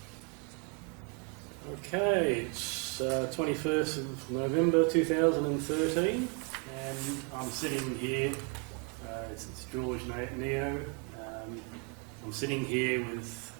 Okay, it's 21st of November 2013 and I'm sitting here, it's George Neo, I'm sitting here with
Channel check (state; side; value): quieter; left; 33.2 dB